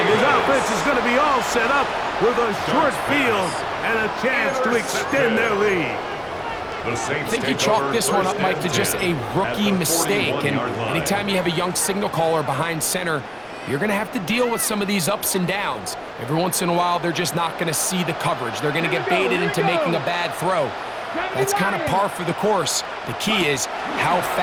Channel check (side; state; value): both; identical; correlation 1.00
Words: his offense is going to be all set up with a short field and a chance to extend their lead. The Saints I think you take chalk over this one first up, Mike, and to just 10 a rookie at the mistake. And 41-yard line. anytime you have a young signal caller behind center, you're going to have to deal with some of these ups and downs. Every once in a while, they're just not going to see the coverage. They're going to get baited into making a bad throw. That's kind of par for the course. The key is how